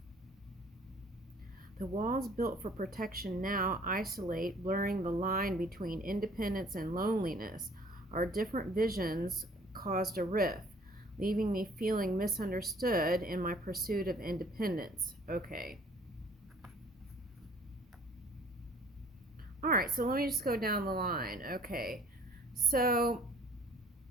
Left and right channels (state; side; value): normal; both; correlation 0.54